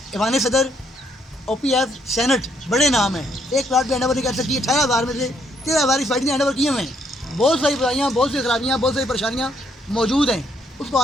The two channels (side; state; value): both; normal; correlation 0.71